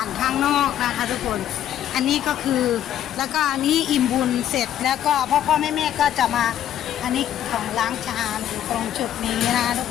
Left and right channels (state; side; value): quieter; right; 11.0 dB